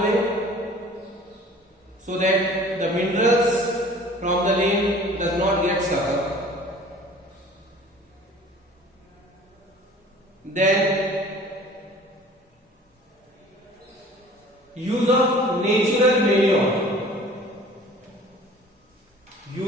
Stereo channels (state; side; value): normal; both; correlation 0.47